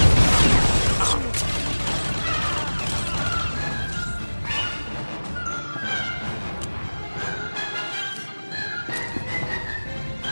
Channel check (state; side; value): inverted; both; correlation -1.00